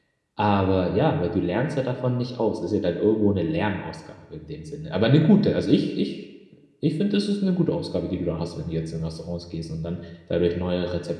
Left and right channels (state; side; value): identical; both; correlation 1.00